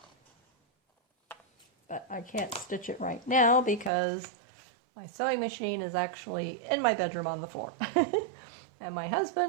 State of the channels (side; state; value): left; drops out; at 3.9 s